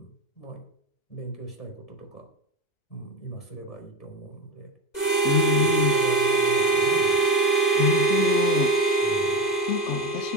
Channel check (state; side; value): late; right; 2.0 ms